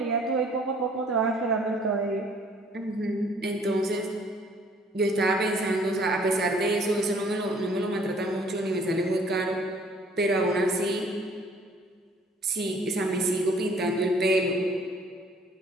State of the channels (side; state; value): both; normal; correlation 0.57